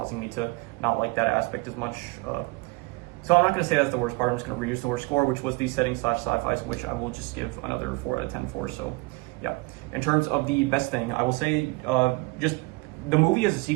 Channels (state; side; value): quieter; left; 26.1 dB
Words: me to not like that aspect as much. So I'm not going to say that's the worst part. I'm just going to reuse the worst score, which was the setting / sci-fi, which I will just give another 4 out of 10 for. So yeah. In terms of the best thing, I will say just the movie as a